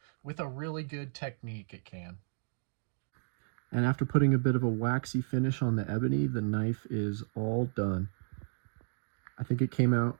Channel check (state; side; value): silent; left; digital silence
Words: With a really good technique, it can. And after putting a bit of a waxy finish on the ebony, the knife is all done. I think it came out